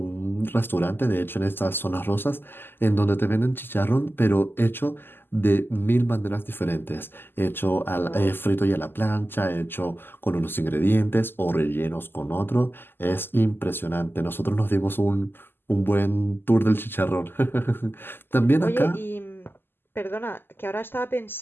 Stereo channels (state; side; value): late; right; 0.099 ms